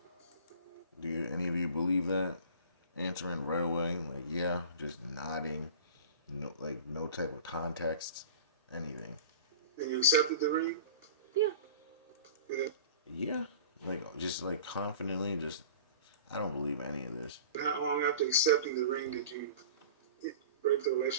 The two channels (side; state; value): both; inverted; correlation -0.41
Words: Do any of you believe that? Answering right away, like yeah, just nodding, no type of context, anything. And you accepted the ring? Yeah. And then Yeah, just confidently, just I don't believe any of this. how long after accepting the ring did you break the